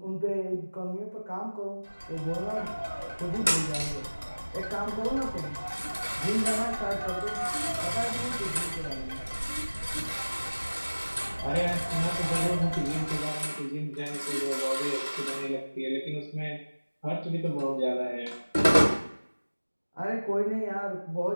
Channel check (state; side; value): inverted; both; correlation -1.00